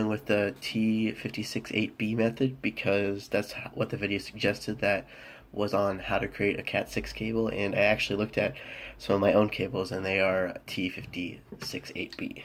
with the T568B method because that's what the video suggested that was on how to create a Cat6 cable, and I actually looked at some of my own cables and they are T568B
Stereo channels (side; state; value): both; identical; correlation 1.00